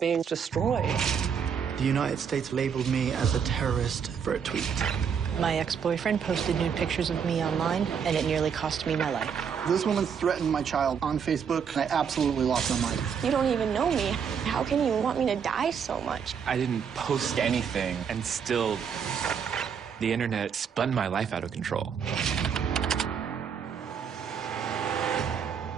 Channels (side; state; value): left; quieter; 7.1 dB